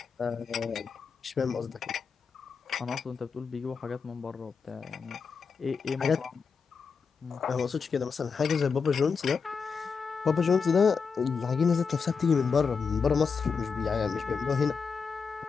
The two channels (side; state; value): right; quieter; 5.5 dB